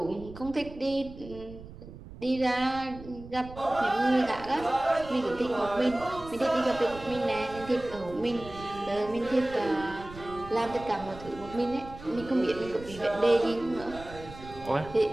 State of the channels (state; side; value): noise; right; rumble, 15 dB below the sound